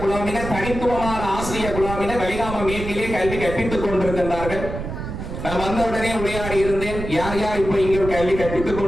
குழாமினர், தனித்துவமான ஆசிரியர் குழாமினர் வெளிகாம மேற்கிலே கல்வி கற்பித்துக் கொண்டிருக்கின்றார்கள். நான் வந்தவுடனே உரையாடி இருந்தேன், யார் யார் இப்ப இங்கே கல்வி கற்பித்துக்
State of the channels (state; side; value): noise; right; rumble, 7 dB below the sound